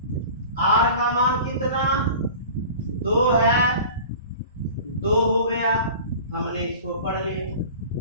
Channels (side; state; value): both; inverted; correlation -0.40